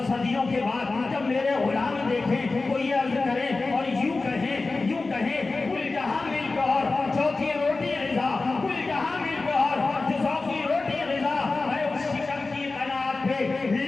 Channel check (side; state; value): right; quieter; 3.6 dB